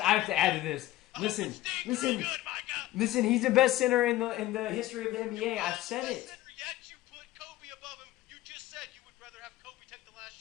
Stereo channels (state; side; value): quieter; right; 16.0 dB